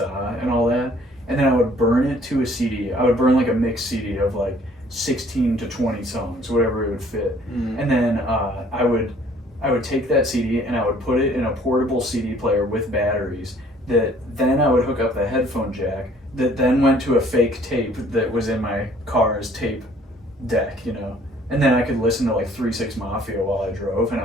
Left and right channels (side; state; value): both; normal; correlation 0.58